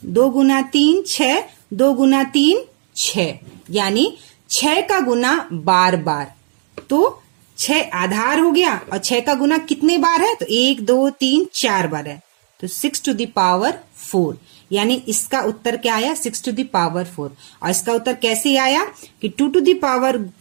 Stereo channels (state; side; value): silent; left; 55 dB below the other